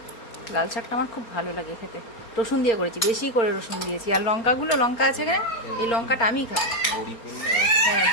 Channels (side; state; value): right; late; 4.3 ms